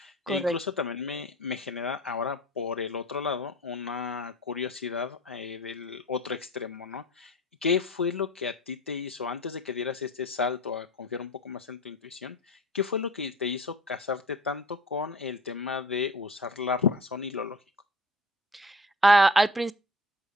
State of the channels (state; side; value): normal; both; correlation 0.39